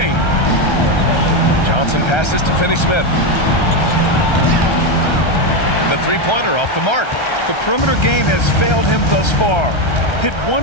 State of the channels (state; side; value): late; right; 1.3 ms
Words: Johnson passes to Finney-Smith. The 3-pointer off the mark. The perimeter game has failed him thus far. Hit